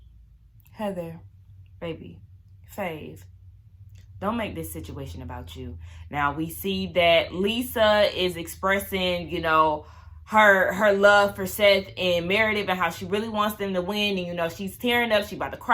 Heather, baby, Fave, don't make this situation about you. Now, we see that Lisa is expressing, you know, her love for Seth and Meredith and how she really wants them to win. And, you know, she's tearing up. She's about to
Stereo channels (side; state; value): both; identical; correlation 1.00